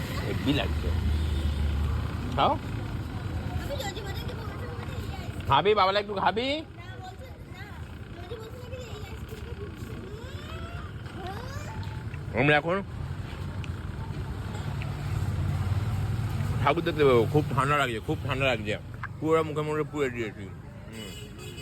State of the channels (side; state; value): both; identical; correlation 1.00